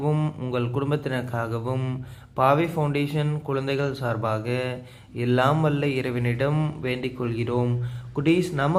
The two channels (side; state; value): both; identical; correlation 1.00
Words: உங்கள் குடும்பத்தினருக்காகவும் பாவை ஃபவுண்டேஷன் குழந்தைகள் சார்பாக எல்லாம் வல்ல இறைவனிடம் வேண்டிக் கொள்கிறோம். குட்டீஸ்,